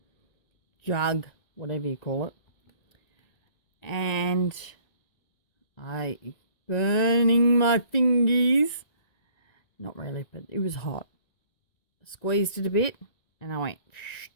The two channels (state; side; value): late; right; 1.9 ms